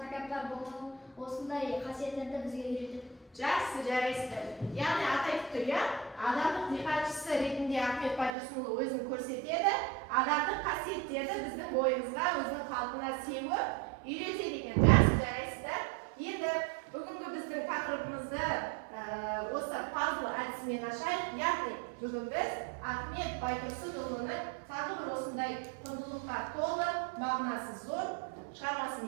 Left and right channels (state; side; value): drops out; left; at 8.3 s